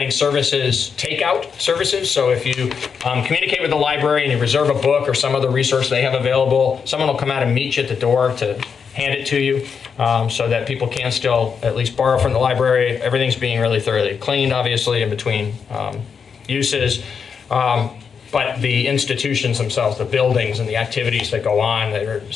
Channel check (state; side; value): quieter; right; 6.3 dB